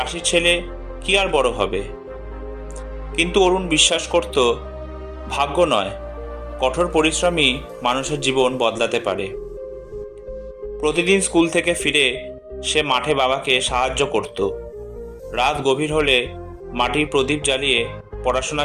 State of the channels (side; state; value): both; identical; correlation 1.00